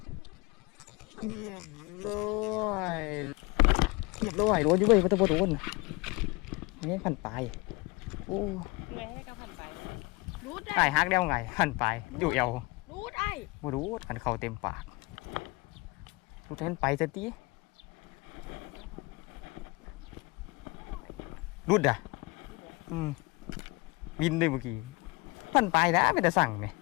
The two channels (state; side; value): quieter; right; 24.9 dB